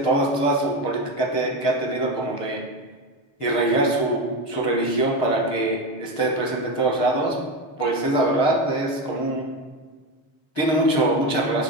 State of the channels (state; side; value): late; right; 6.6 ms